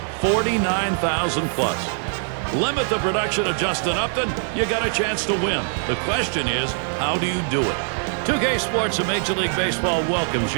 49,000 plus. Limit the production of Justin Upton, you got a chance to win. The question is, how do you do it? 2K Sports and Major League Baseball welcomes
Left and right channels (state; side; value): silent; left; 59 dB below the other